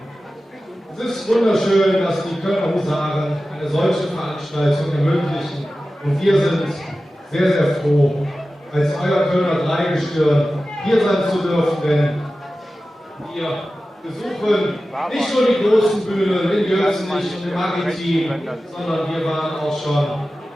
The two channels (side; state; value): both; normal; correlation 0.95